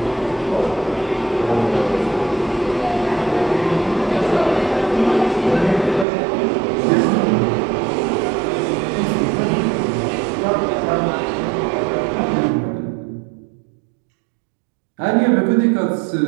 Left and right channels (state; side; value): drops out; left; at 6.1 s